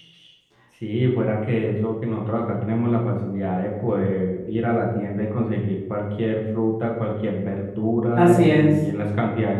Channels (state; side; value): identical; both; correlation 1.00